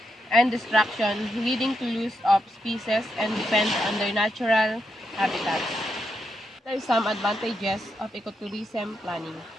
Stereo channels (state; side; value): normal; both; correlation 0.82